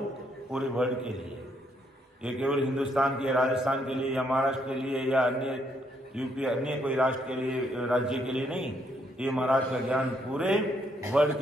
पूरे वर्ल्ड के लिए, ये केवल हिंदुस्तान के, राजस्थान के लिए या महाराष्ट्र के लिए या अन्य यूपी अन्य कोई राष्ट्र के लिए, राज्य के लिए नहीं, ये महाराज का ज्ञान पूरे वर्ल्ड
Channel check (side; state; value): both; normal; correlation 0.73